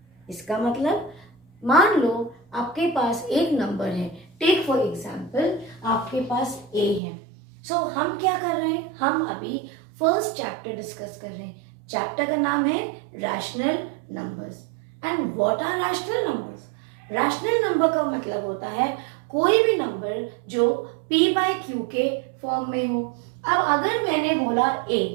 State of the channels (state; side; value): drops out; left; at 7.0 s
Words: इसका मतलब मान लो आपके पास एक नंबर है, टेक फॉर एग्जांपल आपके पास a है. सो हम क्या कर रहे हैं, हम अभी फर्स्ट चैप्टर डिस्कस कर रहे हैं. चैप्टर का नाम है rational numbers. And what are rational numbers? Rational number का मतलब होता है कोई भी नंबर जो p बाय क्यू के फॉर्म में हो. अब अगर मैंने बोला a,